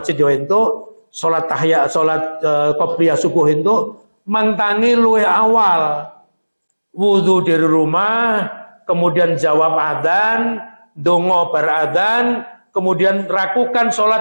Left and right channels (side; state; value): both; inverted; correlation -1.00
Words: yo entuk, sholat qobliyah subuh entuk, mangtangi luwih awal. Wudu dari rumah, kemudian jawab adzan, dongo bar adzan, kemudian lakukan